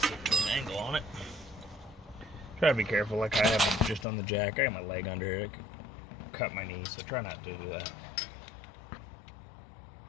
at an angle on it. Try to be careful, like I have it just on the jack. I got my leg under here. It could cut my knee, so try not to do that.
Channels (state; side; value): drops out; right; at 4.0 s